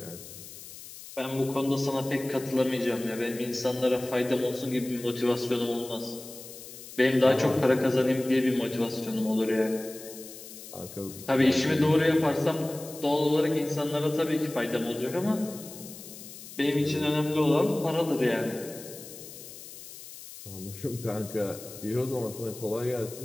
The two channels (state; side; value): noise; left; hiss, 15 dB below the sound